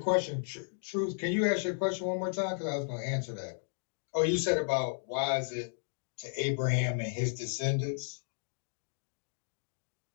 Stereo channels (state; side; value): silent; right; digital silence